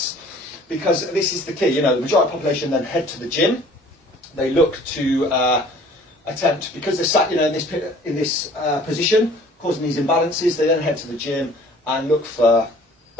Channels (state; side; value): normal; both; correlation 0.51